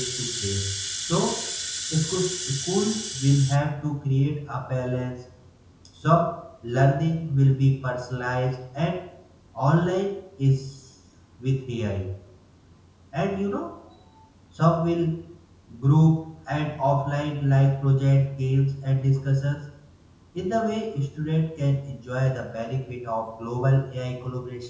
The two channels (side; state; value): both; identical; correlation 1.00